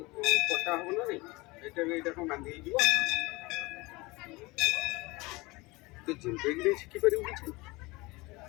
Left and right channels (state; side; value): quieter; right; 23.3 dB